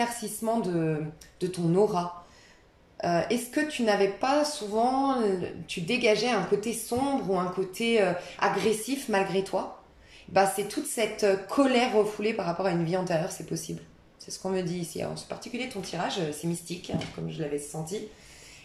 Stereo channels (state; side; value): identical; both; correlation 1.00